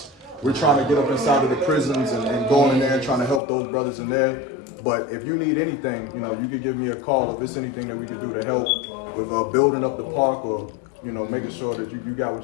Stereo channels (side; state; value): right; drops out; at 3.4 s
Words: We're trying to get up inside of the prisons and going in there and trying to help those brothers in there. But if you need anything, you can give me a call if there's anything that we can do to help with building up the park or making sure that you got